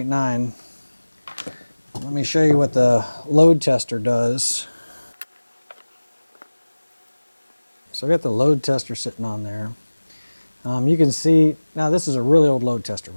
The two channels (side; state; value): both; inverted; correlation -1.00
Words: Let me show you what the load tester does. So I got the load tester sitting on there. You can see, now this is a really old load tester